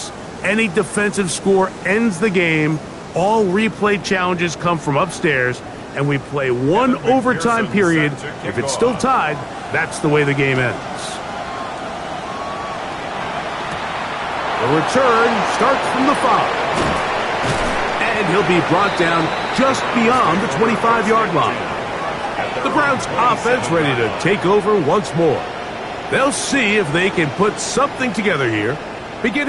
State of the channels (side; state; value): both; identical; correlation 1.00